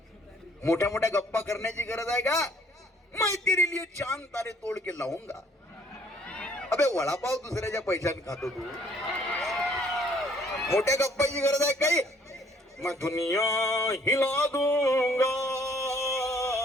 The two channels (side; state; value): both; normal; correlation 0.61